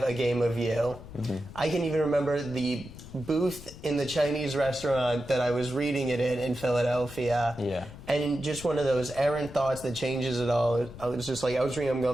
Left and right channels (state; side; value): noise; left; rumble, 15 dB below the sound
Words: A Game of You. I can even remember the booth in the Chinese restaurant that I was reading it in Philadelphia. Yeah. And just one of those errant thoughts that changes it all. I was just I was reading them